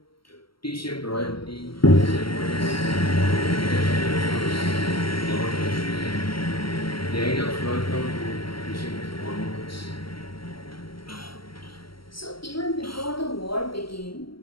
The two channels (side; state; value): right; late; 0.74 ms